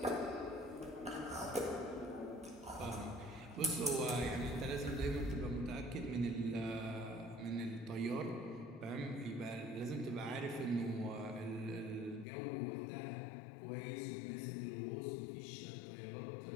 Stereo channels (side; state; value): right; drops out; at 12.2 s